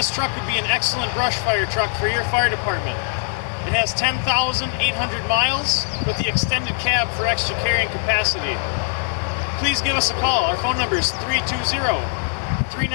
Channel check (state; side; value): silent; right; 65 dB below the other